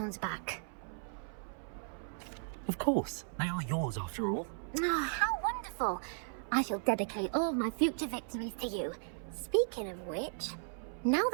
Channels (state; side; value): silent; left; 54 dB below the other